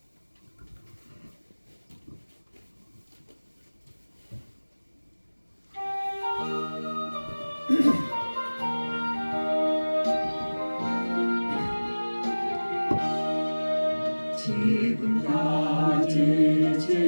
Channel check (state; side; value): inverted; both; correlation -1.00